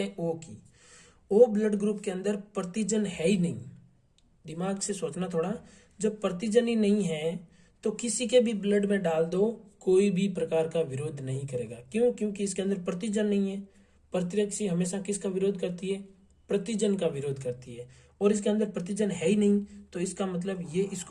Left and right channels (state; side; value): identical; both; correlation 1.00